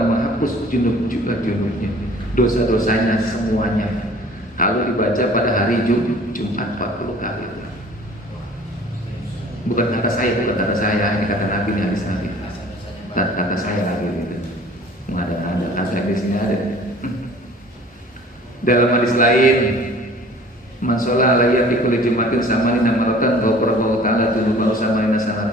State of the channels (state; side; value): normal; both; correlation 0.49